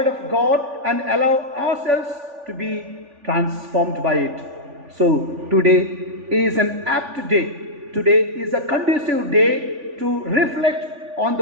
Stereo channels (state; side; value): late; left; 3.5 ms